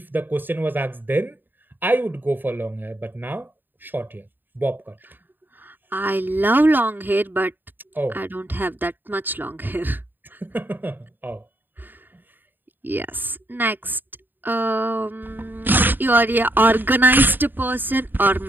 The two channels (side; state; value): left; late; 0.092 ms